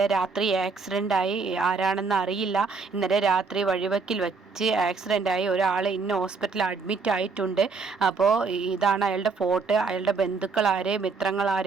രാത്രി ആക്സിഡൻ്റായി, ആരാണെന്ന് അറിയില്ല, ഇന്നലെ രാത്രി വഴിവെക്കിൽ വെച്ച് ആക്സിഡൻ്റായി ഒരാൾ ഇന്ന ഹോസ്പിറ്റലിൽ അഡ്മിറ്റ് ആയിട്ടുണ്ട്. അപ്പോൾ ഇതാണ് അയാളുടെ ഫോട്ടോ. അയാളുടെ ബന്ധുക്കളാരെ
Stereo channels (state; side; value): quieter; left; 4.6 dB